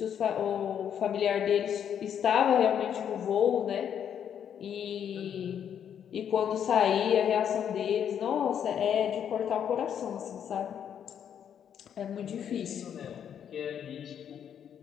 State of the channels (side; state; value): right; quieter; 8.8 dB